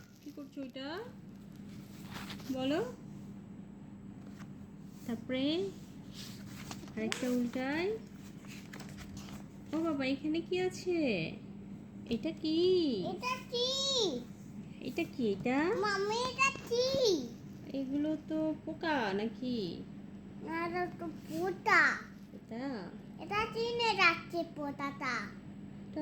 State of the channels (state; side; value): identical; both; correlation 1.00